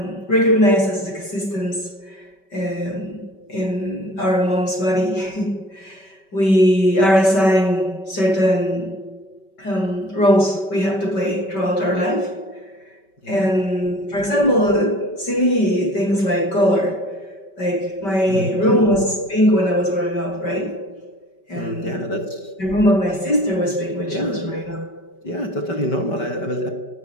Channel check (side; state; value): right; late; 5.2 ms